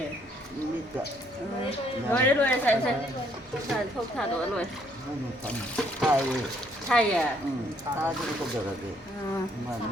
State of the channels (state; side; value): normal; both; correlation 0.67